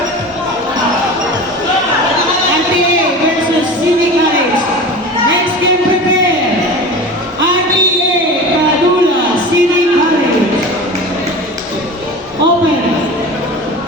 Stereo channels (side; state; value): both; normal; correlation 0.33